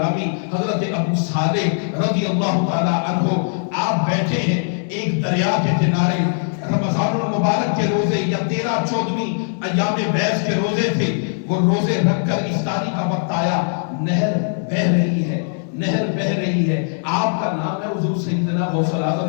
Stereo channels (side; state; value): right; silent; 66 dB below the other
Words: حضرت ابو صالح رضی اللہ تعالی عنہ، آپ بیٹھے ہیں ایک دریا کے کنارے، رمضان المبارک کے روزے یا 13-14 ایام بیس کے روزے تھے. وہ روزے رکھ کر افطاری کا وقت آیا، نہر بہہ رہی ہے، نہر بہہ رہی ہے. آپ کا نام ہے حضور سیدنا غوث